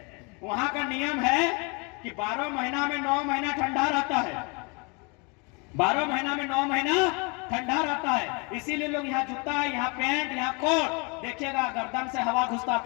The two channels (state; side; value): quieter; right; 31.5 dB